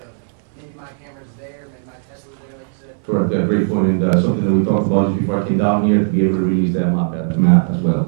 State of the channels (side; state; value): left; silent; 62 dB below the other